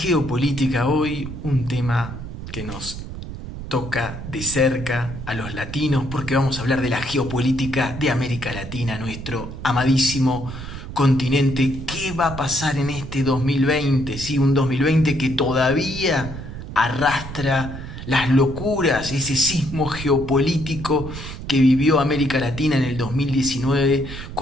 Hoy un tema que nos toca de cerca a los latinos porque vamos a hablar de la geopolítica de América Latina, nuestro amadísimo continente. ¿Qué va a pasar en este 2020? Sí, un 2020 que todavía arrastra las locuras, ese sismo geopolítico que vivió América Latina en el 2019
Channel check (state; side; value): noise; right; rumble, 10 dB below the sound